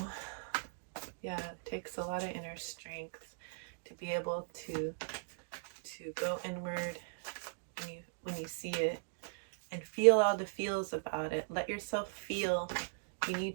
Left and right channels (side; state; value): left; silent; digital silence